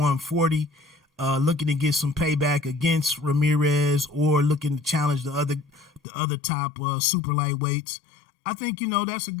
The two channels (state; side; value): drops out; right; at 6.0 s